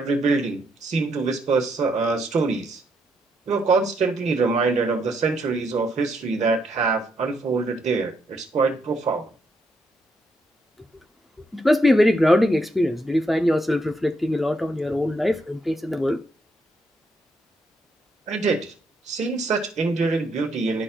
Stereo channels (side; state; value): both; normal; correlation 0.77